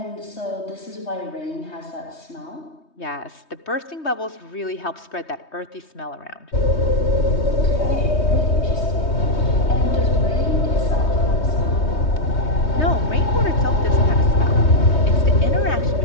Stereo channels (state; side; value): late; right; 3.2 ms